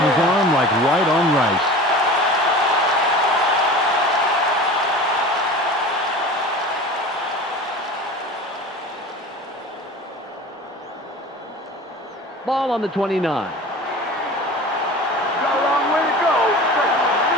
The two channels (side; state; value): both; normal; correlation 0.37